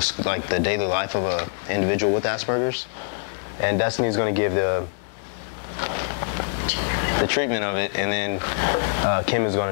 daily life of an individual with Asperger's, and Destiny's going to give the treatment of it, and then Kim is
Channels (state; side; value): silent; right; digital silence